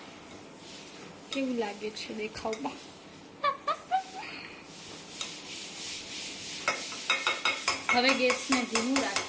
કેવું લાગે છે દેખાવમાં? હવે ગેસને ધીમું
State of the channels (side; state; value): both; identical; correlation 1.00